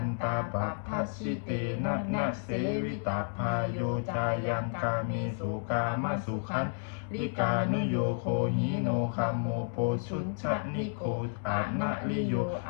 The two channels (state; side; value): silent; right; digital silence